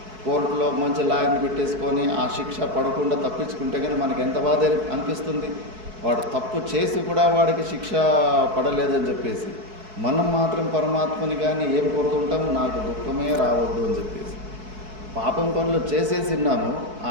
కోర్టులో మంచి లాయర్ని పెట్టేసుకొని ఆ శిక్ష పడకుండా తప్పించుకుంటే కానీ మనకి ఎంత బాధ అనిపిస్తుంది. వాడు తప్పు చేసి కూడా వాడికి శిక్ష పడలేదని చెప్పేసి మనం మాత్రం పరమాత్మని కానీ ఏం కోరుతుంటాము, నాకు దుఃఖమే రావద్దు అని చెప్పేసి. పాపం పనులు చేసేసిన్నాము, ఆ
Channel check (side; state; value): left; late; 4.6 ms